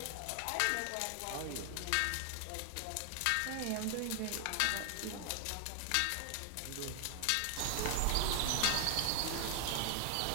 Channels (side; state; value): both; different; correlation 0.00